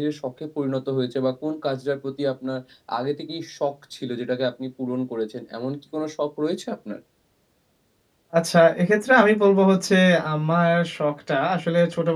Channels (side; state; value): both; identical; correlation 1.00